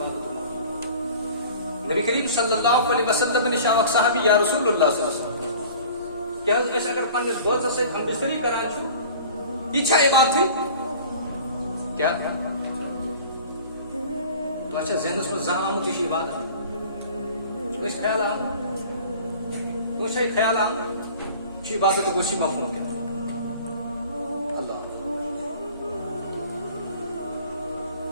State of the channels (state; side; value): inverted; both; correlation -0.44